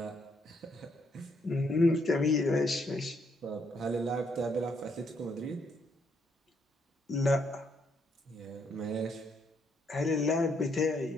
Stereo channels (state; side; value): normal; both; correlation 0.73